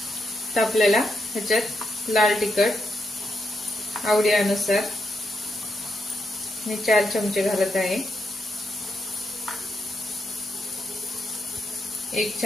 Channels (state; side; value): normal; both; correlation 0.82